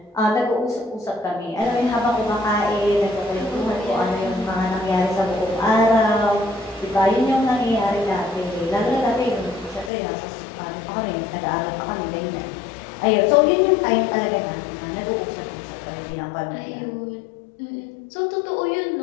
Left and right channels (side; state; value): right; drops out; at 9.9 s